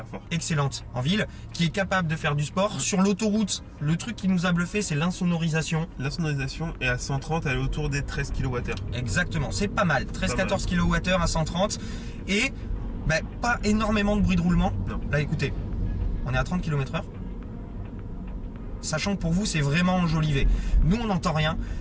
fort. Excellente en ville, qui est capable de faire du sport. Sur l'autoroute, le truc qui nous a bluffé, c'est l'insonorisation. L'insonorisation est à 130, elle est autour des 13 kWh. Exactement, c'est pas mal. 13-14 kWh à 130. Et pas énormément de bruit de roulement. Non. Là, écoutez, on est à 30 km/h. Sachant que pour vous, c'est vraiment enjolivé. Nous, on n'entend rien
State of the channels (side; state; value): both; identical; correlation 1.00